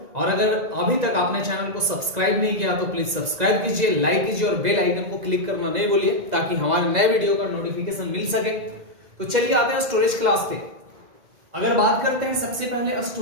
और अगर अभी तक आपने चैनल को सब्सक्राइब नहीं किया तो प्लीज सब्सक्राइब कीजिए, लाइक कीजिए और बेल आइकन को क्लिक करना नहीं भूलिए ताकि हमारे नए वीडियो का नोटिफिकेशन मिल सके। तो चलिए आते हैं स्टोरेज क्लास पे। अगर बात करते हैं सबसे पहले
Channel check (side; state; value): left; late; 1.9 ms